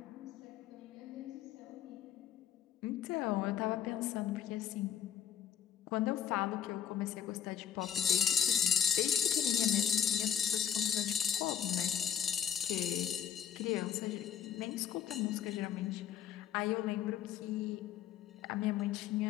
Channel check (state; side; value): quieter; right; 9.3 dB